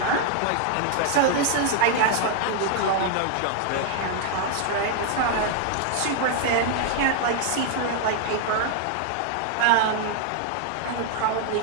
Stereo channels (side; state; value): both; different; correlation 0.00